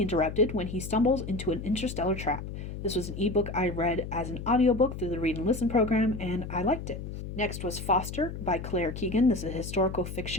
interrupted when he stumbles into an interstellar trap. This was an ebook I read as an audiobook through the Read and Listen program, and I liked it. Next was Foster by Claire Keegan. This is a historical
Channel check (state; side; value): noise; left; hum, 8 dB below the sound